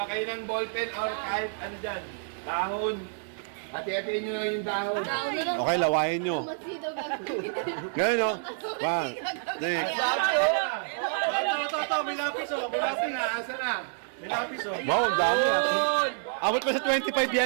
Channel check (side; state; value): left; silent; 59 dB below the other